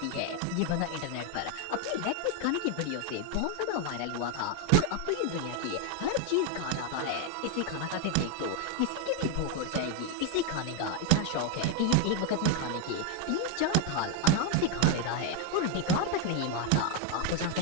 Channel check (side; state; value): both; different; correlation 0.01